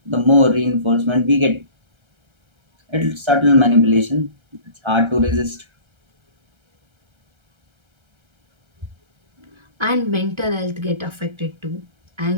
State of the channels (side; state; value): left; late; 1.3 ms